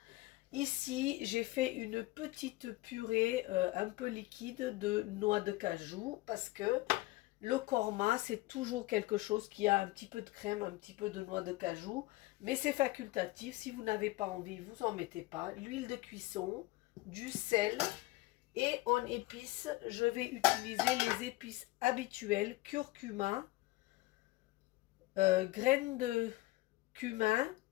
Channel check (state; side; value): quieter; right; 20.3 dB